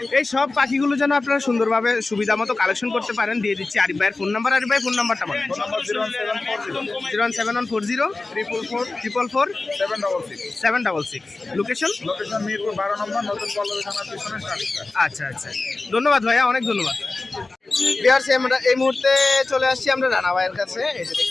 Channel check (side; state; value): right; quieter; 3.4 dB